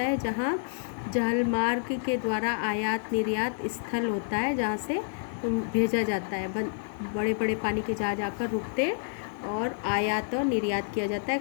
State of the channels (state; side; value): silent; right; 59 dB below the other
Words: है? जहाँ जलमार्ग के द्वारा आयात निर्यात स्थल होता है, जहाँ से भेजा जाता है। बड़े बड़े पानी के जहाज आकर रुकते हैं और आयात और निर्यात किया जाता है,